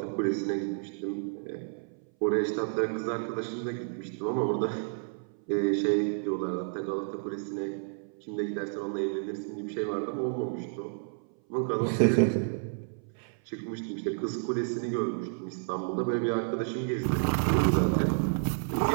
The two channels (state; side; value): silent; left; 57 dB below the other